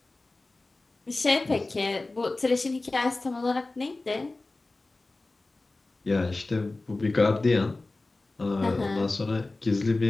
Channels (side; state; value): right; quieter; 3.2 dB